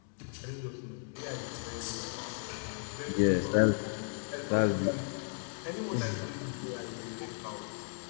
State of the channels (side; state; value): right; silent; 54 dB below the other